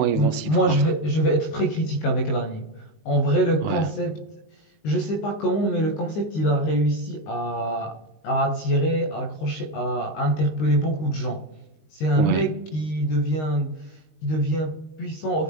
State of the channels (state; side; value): late; right; 19 ms